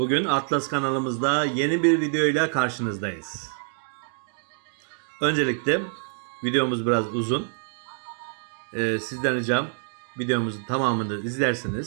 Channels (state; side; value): silent; left; 61 dB below the other